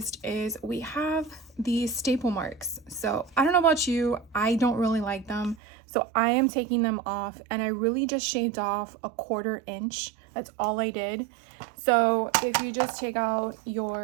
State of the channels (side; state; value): left; drops out; at 5.6 s